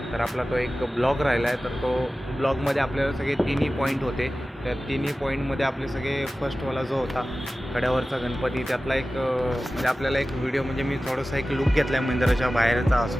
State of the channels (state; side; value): normal; both; correlation 0.95